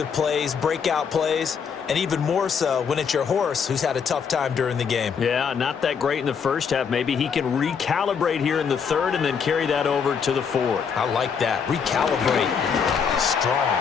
plays, breakout plays, and even more so when it's your horse who's had a tough time during the game. Yeah, not that great in the first half. Maybe he can recalibrate here in the third and then carry that over to the fourth. I like that. Recalibrate. Strong.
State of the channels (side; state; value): right; quieter; 6.5 dB